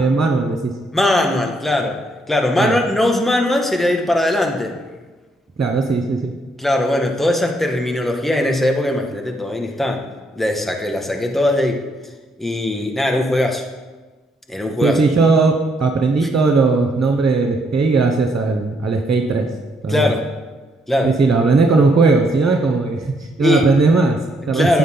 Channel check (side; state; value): both; normal; correlation 0.73